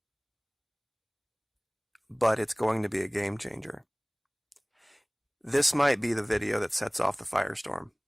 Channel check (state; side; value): identical; both; correlation 1.00